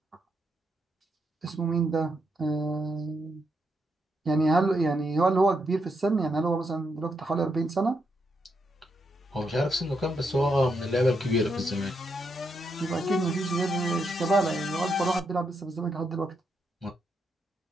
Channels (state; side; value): normal; both; correlation 0.80